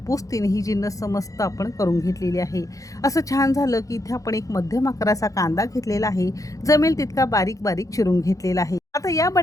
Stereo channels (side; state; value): right; late; 0.16 ms